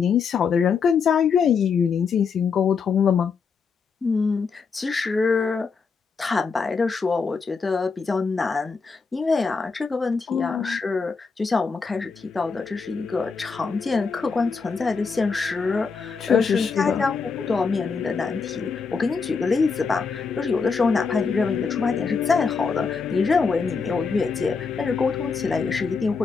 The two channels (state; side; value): quieter; right; 5.2 dB